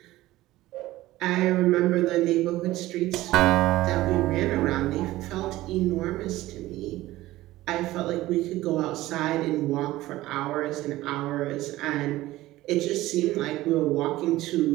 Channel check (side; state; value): left; quieter; 16.8 dB